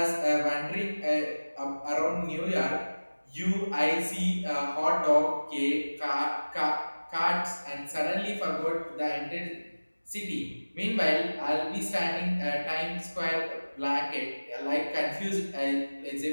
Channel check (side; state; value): both; inverted; correlation -1.00